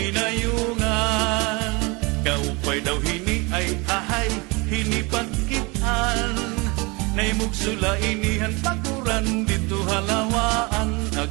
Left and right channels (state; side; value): quieter; left; 27.1 dB